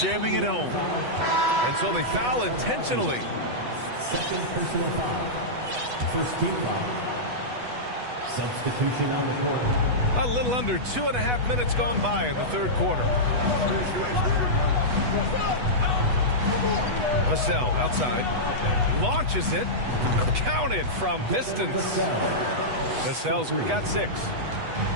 jamming it home. And so they foul intentionally. Second personal foul. First team foul. Substitution on the court. A little under 2.5 minutes gone by in the third quarter. Vassell outside. Launches it. Counted from distance. Vassell's got 6.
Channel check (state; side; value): late; left; 8.1 ms